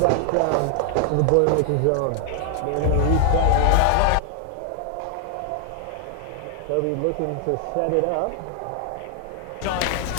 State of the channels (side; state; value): both; different; correlation 0.00